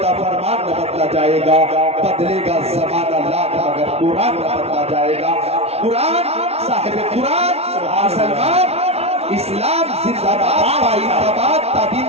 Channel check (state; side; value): late; left; 0.30 ms